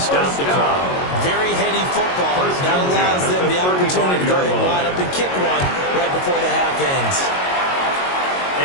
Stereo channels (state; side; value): late; right; 22 ms